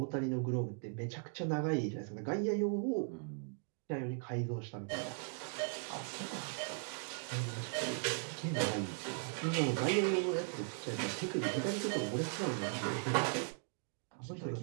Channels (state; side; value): silent; left; 52 dB below the other